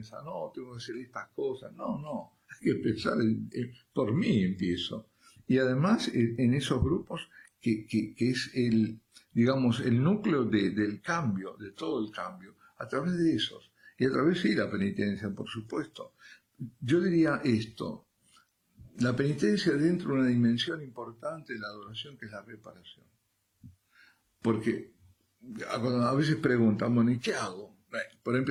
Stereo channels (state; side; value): identical; both; correlation 1.00